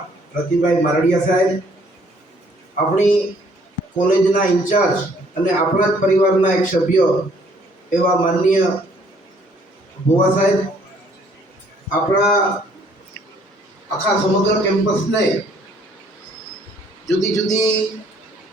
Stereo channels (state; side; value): normal; both; correlation 0.63